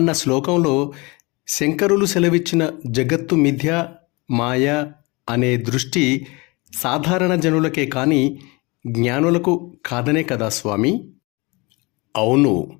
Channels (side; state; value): right; quieter; 26.1 dB